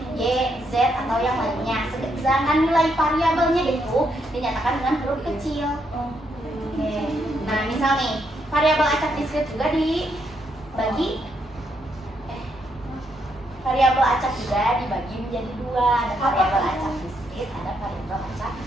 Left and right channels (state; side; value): normal; both; correlation 0.77